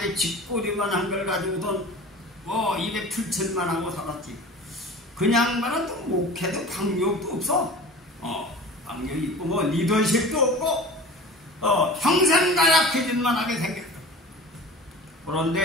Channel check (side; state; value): both; normal; correlation 0.38